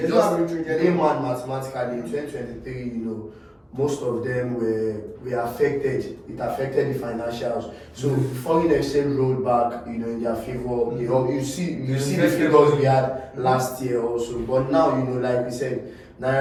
Just layman mathematically in 2023, most of them were affected. It affected the financials. So foreign exchange rolled back, in their favor. You see the figures we had last year also. But now, like we said,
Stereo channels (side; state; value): both; identical; correlation 1.00